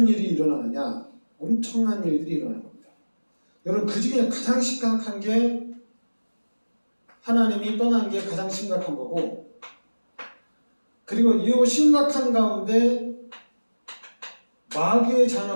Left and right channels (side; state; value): both; inverted; correlation -1.00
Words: 일이 일어나느냐? 엄청난 일들이 일어나는 겁니다. 여러분 그 중에 가장 심각한 게 하나님이 떠난 게 가장 심각한 거고, 그리고 이 심각한 가운데 마귀의